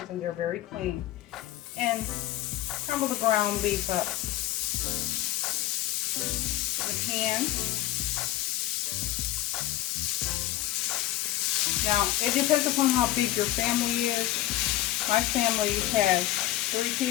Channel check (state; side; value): quieter; right; 14.8 dB